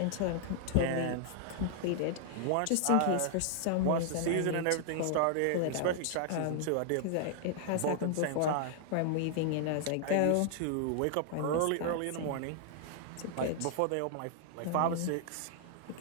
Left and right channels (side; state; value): both; different; correlation -0.01